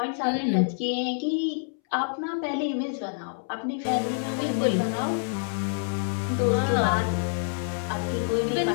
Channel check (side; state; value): right; silent; 60 dB below the other